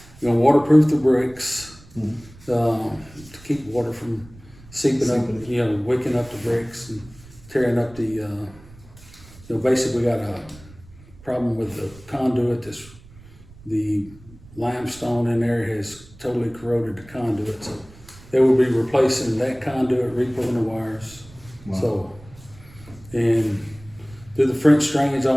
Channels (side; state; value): right; noise; rumble, 22 dB below the sound